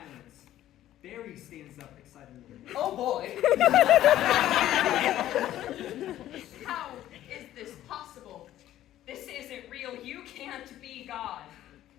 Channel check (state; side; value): quieter; right; 13.0 dB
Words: Barry stands up excitedly. Oh boy! How is this possible? This isn't real. You can't be God.